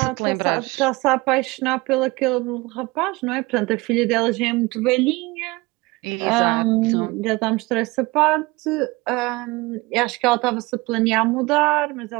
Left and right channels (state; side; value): quieter; left; 22.9 dB